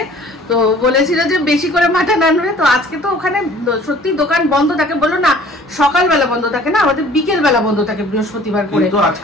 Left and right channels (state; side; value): normal; both; correlation 0.51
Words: তো বলেছিল যে বেশি করে মাটন আনবে। তো আজকে তো ওখানে সত্যি দোকান বন্ধ থাকে, বললো না সকালবেলা বন্ধ থাকে না, আমাদের বিকেল বেলা বন্ধ থাকে বৃহস্পতিবার করে। কিন্তু আজ